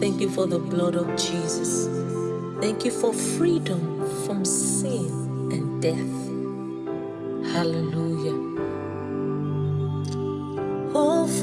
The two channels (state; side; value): identical; both; correlation 1.00